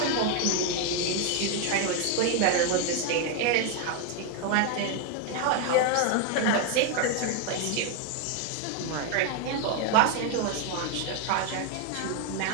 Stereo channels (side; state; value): both; different; correlation 0.01